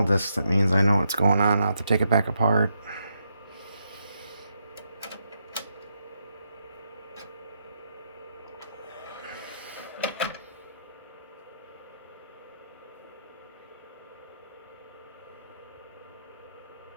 discs, that means I know what's going on. I'll have to take it back apart.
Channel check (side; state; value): both; inverted; correlation -0.81